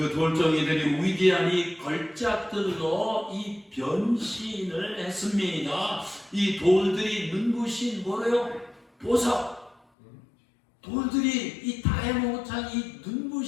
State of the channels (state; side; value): drops out; right; at 9.8 s